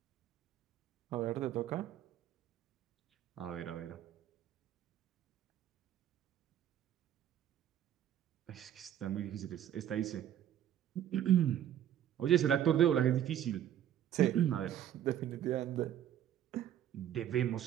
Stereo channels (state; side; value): quieter; left; 10.9 dB